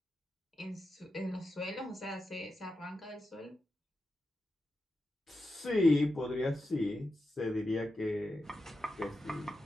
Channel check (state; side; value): normal; both; correlation 0.89